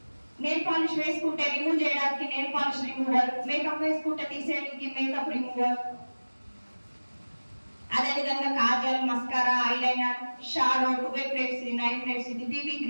నెయిల్ పాలిష్ వేసుకుంటే రిమూవ్ చేయడానికి నెయిల్ పాలిష్ రిమూవర్, మేకప్ వేసుకుంటే తీసేయడానికి మేకప్ రిమూవర్, అదేవిధంగా Kajal, mascara, eyeliner, shadow, 2 plates, 9 plates, ఇది బీబీ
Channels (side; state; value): both; inverted; correlation -1.00